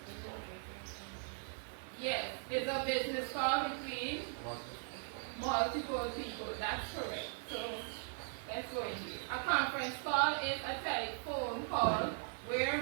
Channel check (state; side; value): silent; left; 52 dB below the other